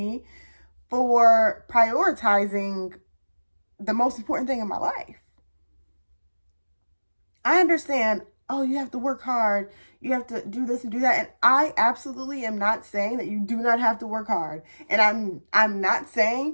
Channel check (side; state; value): both; inverted; correlation -1.00